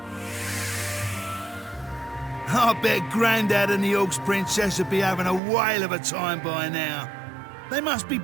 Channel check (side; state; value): left; drops out; at 5.4 s